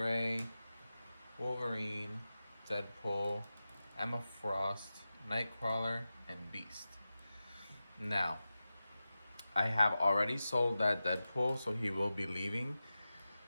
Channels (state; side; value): inverted; both; correlation -0.94